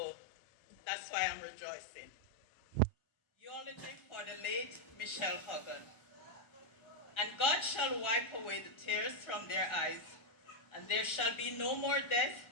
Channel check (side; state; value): right; late; 1.4 ms